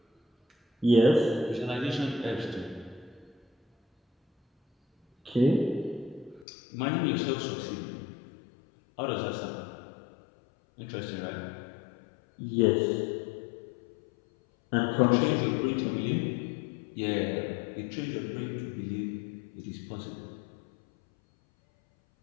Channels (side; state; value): right; drops out; at 6.5 s